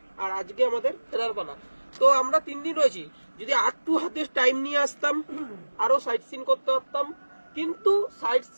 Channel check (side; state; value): both; inverted; correlation -1.00